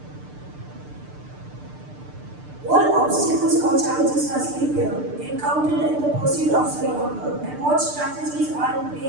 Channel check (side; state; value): left; late; 6.7 ms